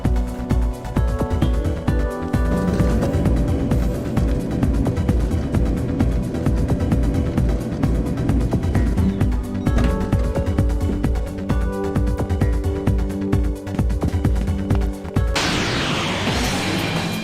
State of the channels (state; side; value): identical; both; correlation 1.00